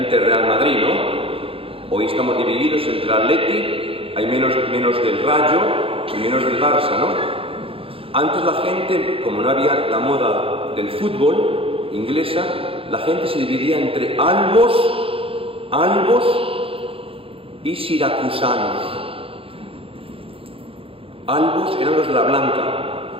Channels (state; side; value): late; left; 0.27 ms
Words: del Real Madrid, ¿no? Hoy estamos divididos entre el Atleti, hay menos del Rayo y menos del Barça, ¿no? Antes la gente, como no había la moda del fútbol inglesa, la gente se dividía entre albos y siracusanos. Albos eran los de la blanca.